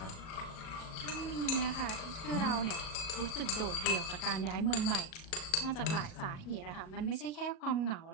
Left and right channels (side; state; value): right; late; 37 ms